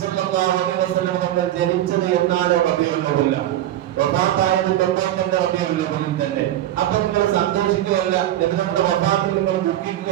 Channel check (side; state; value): left; quieter; 13.1 dB